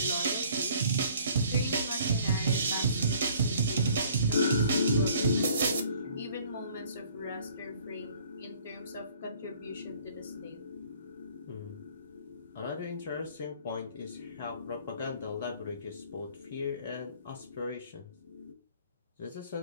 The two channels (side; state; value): both; inverted; correlation -0.55